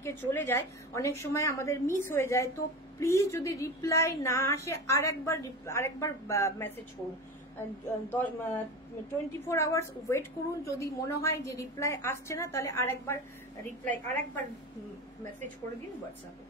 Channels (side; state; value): both; normal; correlation 0.27